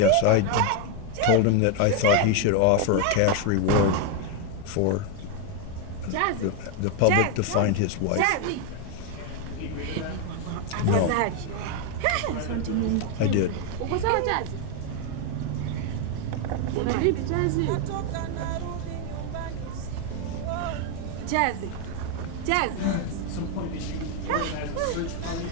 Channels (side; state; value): both; different; correlation 0.01